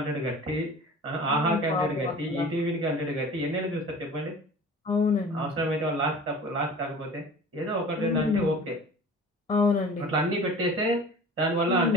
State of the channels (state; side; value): normal; both; correlation 0.41